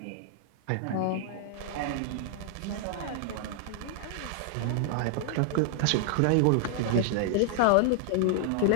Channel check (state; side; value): different; both; correlation 0.00